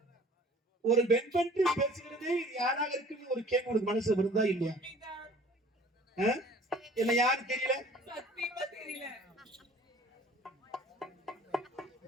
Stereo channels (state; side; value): normal; both; correlation 0.50